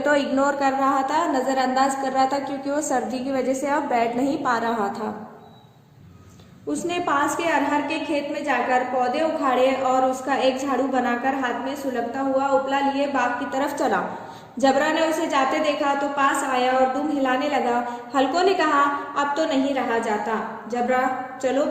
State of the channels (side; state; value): both; identical; correlation 1.00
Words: इग्नोर कर रहा था, नज़रअंदाज कर रहा था, क्योंकि वो सर्दी की वजह से अब बैठ नहीं पा रहा था। उसने पास के अरहर के खेत में जाकर पौधे उखाड़े और उसका एक झाड़ू बनाकर हाथ में सुलगता हुआ उपला लिए बाग की तरफ चला। जबरा ने उसे जाते देखा तो पास आया और दुम हिलाने लगा। हल्को ने कहा, अब तो नहीं रहा जाता। जबरा, चलो